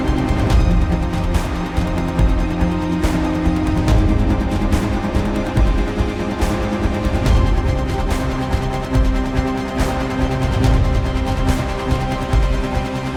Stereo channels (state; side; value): identical; both; correlation 1.00